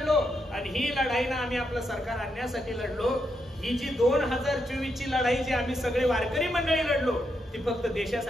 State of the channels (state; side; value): normal; both; correlation 0.81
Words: आणि ही लढाई ना आम्ही आपलं सरकार आणण्यासाठी लढलो. ही जी 2024 ची लढाई जी आम्ही सगळे वारकरी मंडळी लढलो ती फक्त